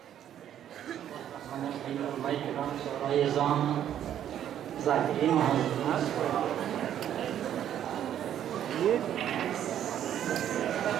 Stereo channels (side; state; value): left; quieter; 10.4 dB